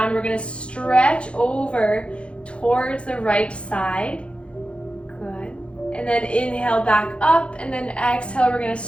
We're going to stretch over towards the right side. Good. And then inhale back up, and then exhale, we're going to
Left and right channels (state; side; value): late; right; 0.059 ms